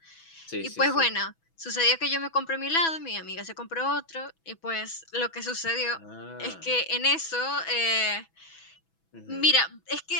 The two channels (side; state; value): right; late; 6.1 ms